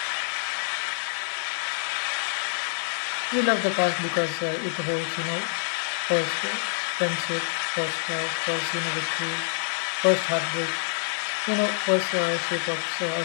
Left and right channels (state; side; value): silent; right; digital silence